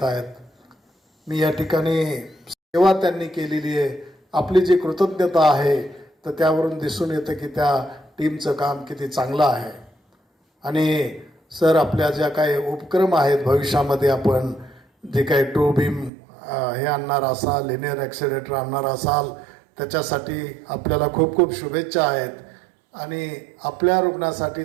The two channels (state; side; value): drops out; left; at 16.1 s